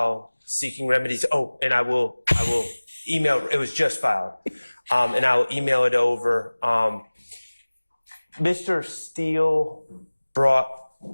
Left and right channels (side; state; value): both; inverted; correlation -1.00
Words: seeking remedies. Oh, and I will email, it was just filed, and I will email it over. Mr. Steele brought